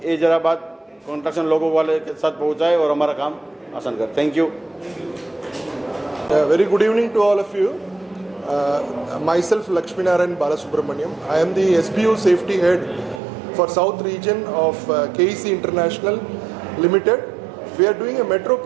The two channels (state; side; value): drops out; left; at 13.2 s